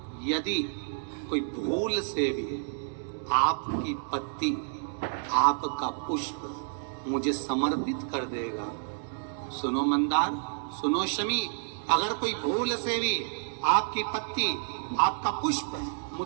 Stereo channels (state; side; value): silent; left; digital silence